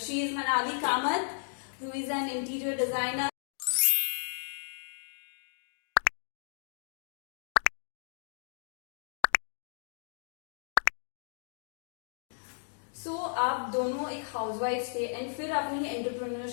is Manali Kamath, who is an interior designer. So आप दोनों एक housewife थे and फिर आपने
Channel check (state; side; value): silent; right; digital silence